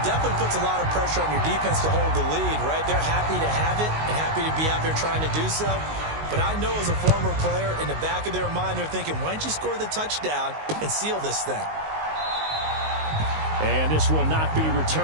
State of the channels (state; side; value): late; left; 19 ms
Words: definitely puts a lot of pressure on your defense to hold the lead, right? They're happy to have it and happy to be out there trying to do so. But I know as a former player, in the back of their mind, they're thinking, why don't you score the touchdown and seal this thing? And this will not be